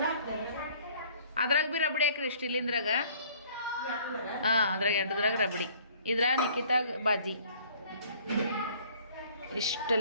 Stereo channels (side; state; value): both; inverted; correlation -0.55